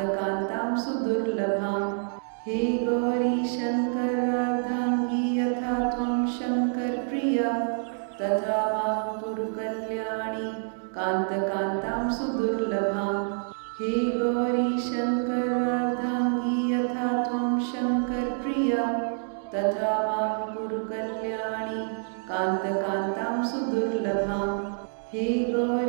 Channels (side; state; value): left; silent; digital silence